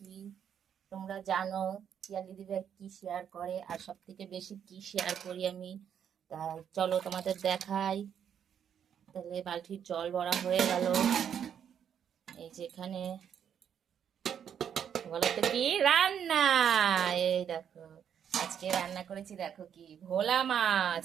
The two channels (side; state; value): left; quieter; 8.6 dB